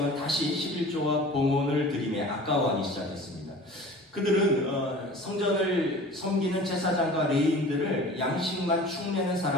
다시 11조와 봉헌을 드리며 아까워하기 시작했습니다. 그들은 성전을 섬기는 제사장과 레위인들을 양식만 축내는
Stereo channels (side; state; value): both; normal; correlation 0.42